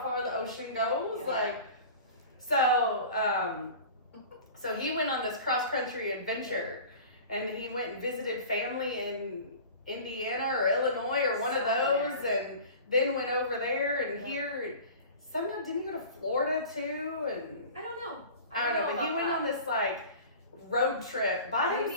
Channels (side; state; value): both; inverted; correlation -0.39